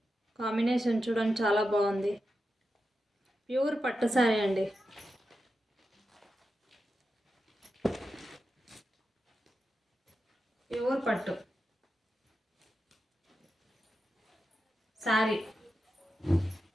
కాంబినేషన్ చూడండి, చాలా బాగుంది. ప్యూర్ పట్టు శారీ అండి. ప్యూర్ పట్టు sari.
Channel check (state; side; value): normal; both; correlation 0.90